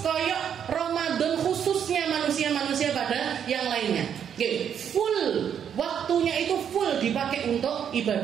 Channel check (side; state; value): left; quieter; 8.5 dB